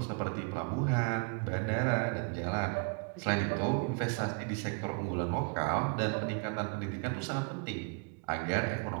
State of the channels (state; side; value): quieter; left; 35.7 dB